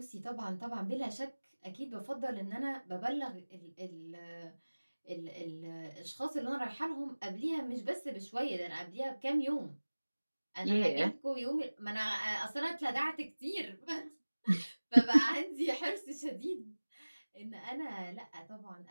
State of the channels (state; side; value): inverted; both; correlation -1.00